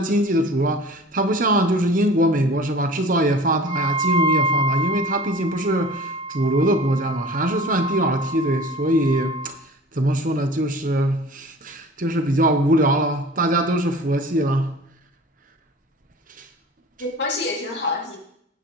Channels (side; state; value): both; normal; correlation 0.42